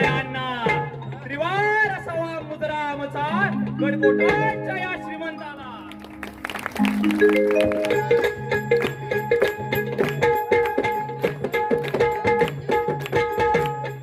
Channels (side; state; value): both; identical; correlation 1.00